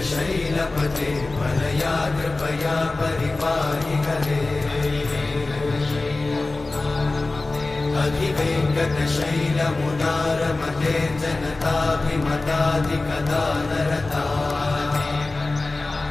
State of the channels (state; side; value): quieter; right; 3.2 dB